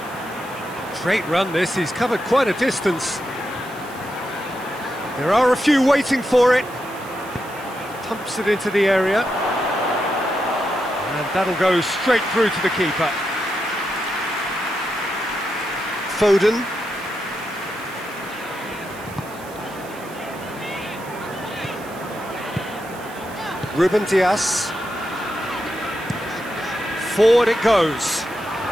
Great run this, he's covered quite a distance. There are a few waiting for it. Pumps it into the area. And that'll go straight through to the keeper. Foden. Ruben Dias. Forward it goes.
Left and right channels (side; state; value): right; noise; hiss, 20 dB below the sound